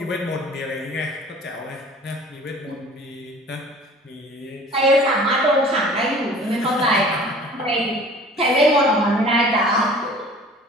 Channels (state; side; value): normal; both; correlation 0.47